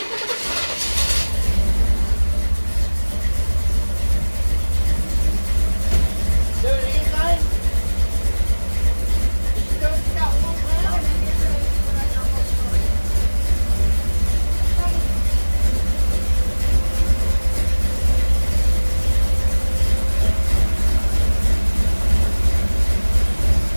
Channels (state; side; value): inverted; both; correlation -1.00